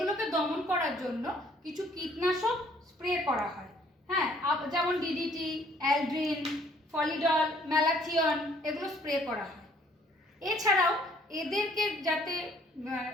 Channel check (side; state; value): both; normal; correlation 0.61